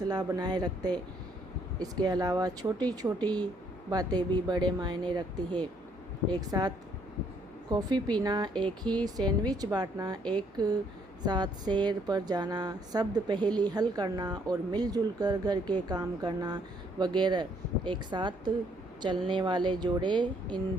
बनाए रखते। इसके अलावा छोटी छोटी बातें भी बड़े मायने रखती है। एक साथ कॉफ़ी पीना, एक ही सैंडविच बांटना, एक साथ सैर पर जाना, शब्द पहेली हल करना और मिलजुल कर घर के काम करना वगैरह। एक साथ चलने वाले जोड़े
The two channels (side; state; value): right; noise; hum, 27 dB below the sound